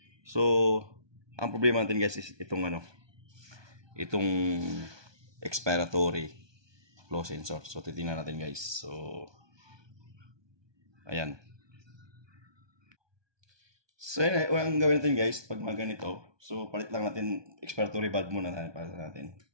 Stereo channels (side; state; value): left; late; 1.2 ms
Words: So ang problema natin guys is itong itong expiratory flow sensor. So titingnan natin guys. So ayan. So yun, ang gawin natin guys pag mga ganito, so palit lang natin expiratory valve muna para natin.